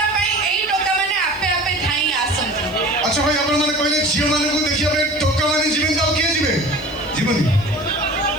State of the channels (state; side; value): noise; left; hiss, 26 dB below the sound